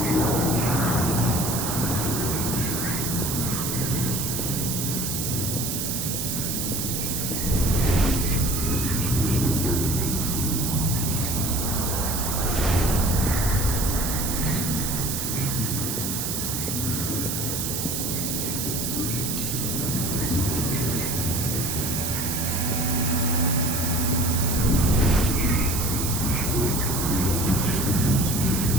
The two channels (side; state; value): right; noise; hiss, 2 dB below the sound